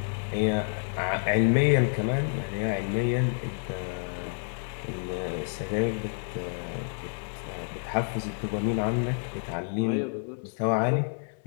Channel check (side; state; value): right; silent; 59 dB below the other